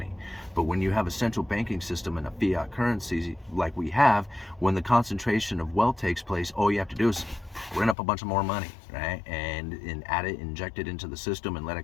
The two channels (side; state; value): right; drops out; at 8.0 s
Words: But when you have a central banking system and a fiat currency like we have, when the concentration of wealth takes place, all you have to do is print up a bunch of more money, right? And add it, inject it into the system, and let it